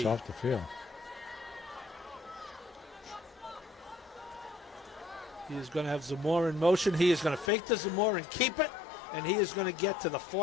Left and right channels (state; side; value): drops out; right; at 7.5 s